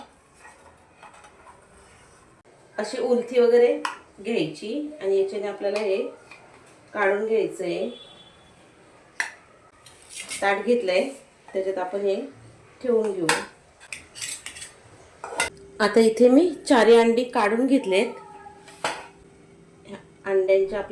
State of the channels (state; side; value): identical; both; correlation 1.00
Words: अशी उलथी वगैरे घ्यायची आणि याच्याने आपल्याला हे काढून घ्यायचंय। ताट घेतलंय, त्याच्यात आपण हे ठेवून घेऊ. आता इथे मी 4 अंडी काढून घेतलेत. अंड्यांचे